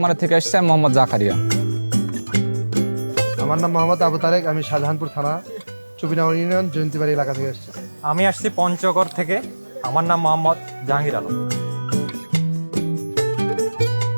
থেকে আসছি, আমি মোহাম্মদ জাকারিয়া। আমার নাম মোহাম্মদ আবু তারেক, আমি শাহজাহানপুর থানা চুপিনগর ইউনিয়ন জয়ন্তীবাড়ি এলাকা থেকে এসেছি। আমি আসছি পঞ্চগড় থেকে, আমার নাম মোহাম্মদ জাহাঙ্গীর আলম।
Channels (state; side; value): inverted; both; correlation -1.00